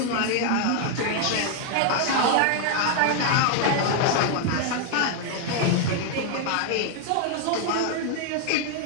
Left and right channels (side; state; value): both; different; correlation 0.00